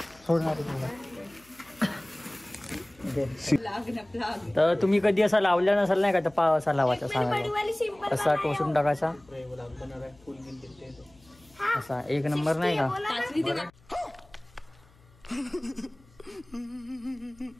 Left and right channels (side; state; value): left; noise; hum, 29 dB below the sound